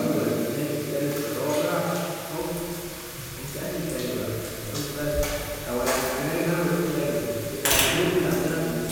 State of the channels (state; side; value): identical; both; correlation 1.00